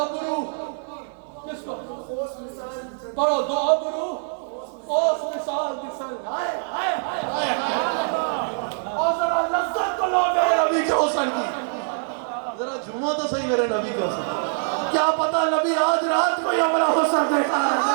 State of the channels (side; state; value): left; silent; 63 dB below the other